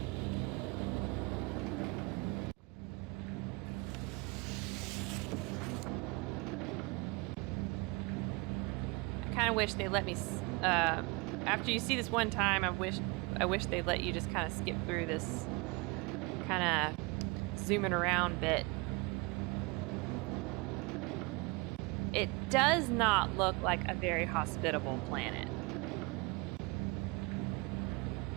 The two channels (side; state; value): left; quieter; 26.3 dB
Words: I wish they let me after you see this one time, I wish they let you just kind of skip through this kind of zooming around bit. It does not look like a very hospitable planet.